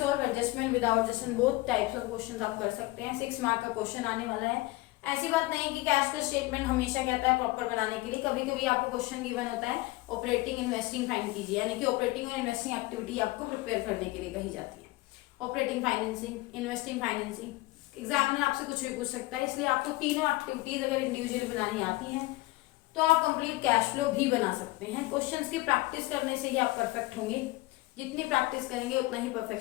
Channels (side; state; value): right; quieter; 20.7 dB